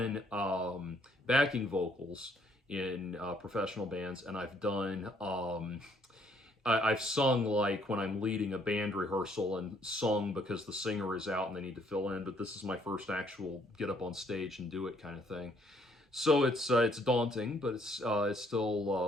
backing vocals in professional bands, and I've sung like when I'm leading a band rehearsal and sung because the singer is out and they need to fill in. But this is my first actual get up on stage and do it kind of thing. So it's daunting, but it's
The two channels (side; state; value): both; normal; correlation 0.66